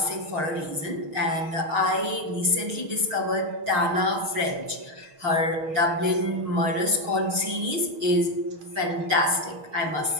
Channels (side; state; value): left; late; 6.4 ms